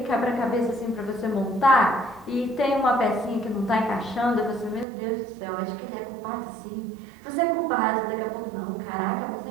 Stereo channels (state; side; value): drops out; left; at 4.9 s